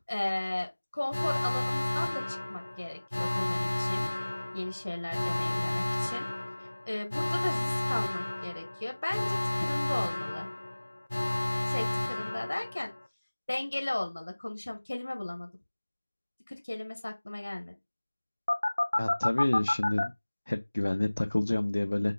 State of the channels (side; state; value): both; inverted; correlation -1.00